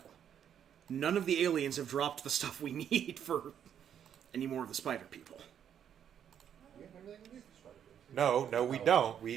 None of the aliens have dropped the stuff we need for any more of the spider people. We have everything we need for spider people. No, we don't.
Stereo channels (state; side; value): quieter; left; 9.0 dB